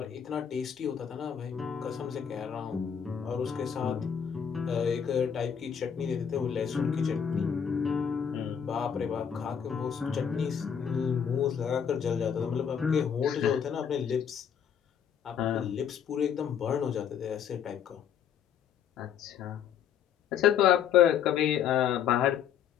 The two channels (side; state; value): right; quieter; 8.1 dB